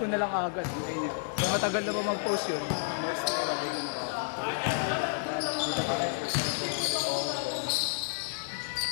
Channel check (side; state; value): right; silent; 57 dB below the other